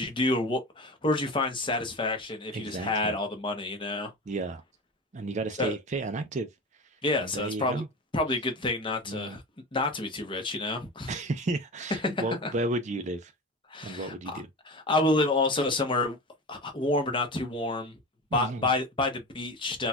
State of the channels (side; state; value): both; normal; correlation 0.29